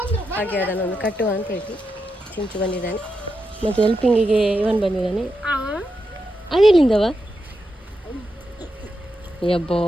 ಹಾಗೆ ಅದನ್ನೊಂದು ಕಟ್ಟುವ ಅಂತ ಹೇಳಿ ಚಿಂಚು ಬಂದಿದ್ದಾನೆ. ಮತ್ತು ಹೆಲ್ಪಿಂಗಿಗೆ ಇವನ್ ಬಂದಿದ್ದಾನೆ. ಅದೆಲ್ಲಿಂದವ? ಯಬ್ಬೋ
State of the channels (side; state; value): both; normal; correlation 0.86